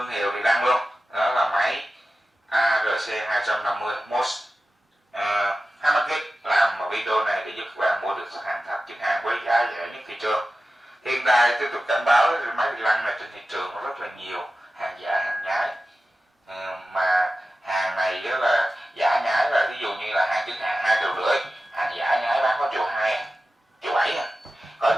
hiệu Rilang luôn. Đó là máy ARC 250 MOS 20kg. Làm video này để giúp các bạn mua được hàng thật chính hãng với giá rẻ nhất thị trường. Hiện tại tôi cảnh báo máy Rilang này trên thị trường nó rất là nhiều hàng giả, hàng nhái, mà hàng này đó là giả nhái, là ví dụ như là hàng chính hãng 2,5 triệu, hàng giả nhái bán có 1,2 triệu, 1,7 triệu. Có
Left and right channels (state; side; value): normal; both; correlation 0.94